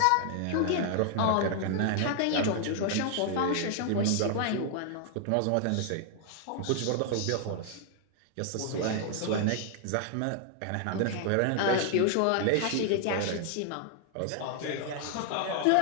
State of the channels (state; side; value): different; both; correlation 0.00